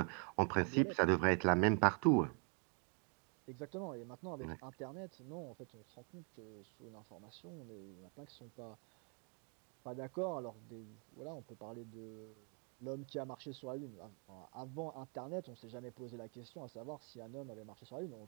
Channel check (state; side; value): quieter; left; 38.0 dB